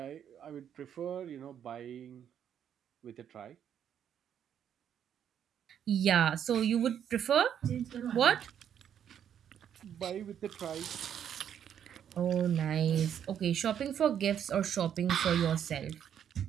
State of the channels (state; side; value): quieter; left; 9.2 dB